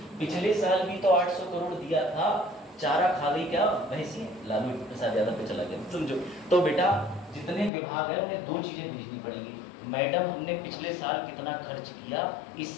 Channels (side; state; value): right; drops out; at 7.7 s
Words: पिछले साल भी तो 800 करोड़ दिया था, चारा खा गई क्या भैंसी? लालू प्रसाद यादव पे चला गया, समझो। तो बेटा जितने विभाग है उन्हें दो चीजें भेजनी पड़ेगी। मैडम हमने पिछले साल कितना खर्च किया, इस